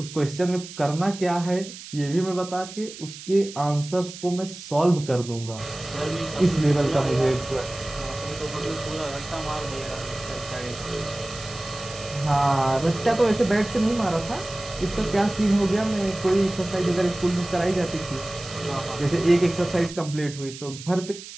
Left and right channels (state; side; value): noise; right; hiss, 14 dB below the sound